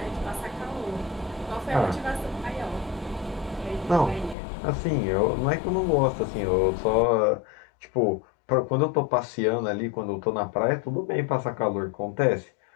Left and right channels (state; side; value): drops out; right; at 4.4 s